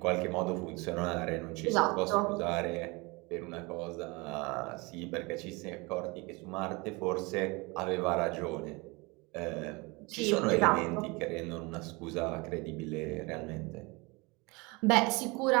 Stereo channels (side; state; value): left; quieter; 26.3 dB